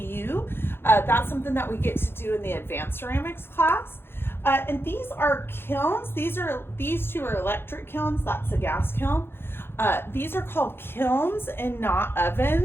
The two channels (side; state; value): right; late; 0.11 ms